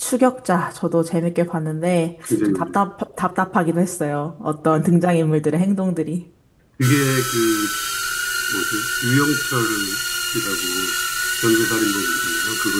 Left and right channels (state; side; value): identical; both; correlation 1.00